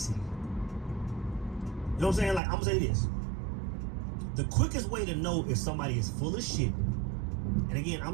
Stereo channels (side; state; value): left; drops out; at 2.4 s